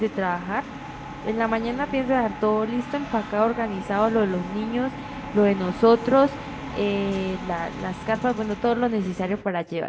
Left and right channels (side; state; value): both; identical; correlation 1.00